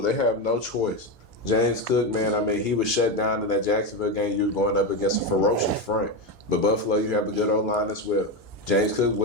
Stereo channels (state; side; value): normal; both; correlation 0.13